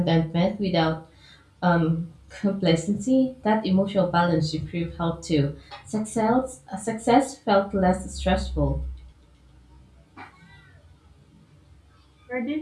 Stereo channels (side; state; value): both; identical; correlation 1.00